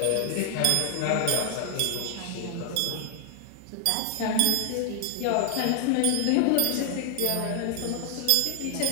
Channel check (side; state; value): both; different; correlation 0.00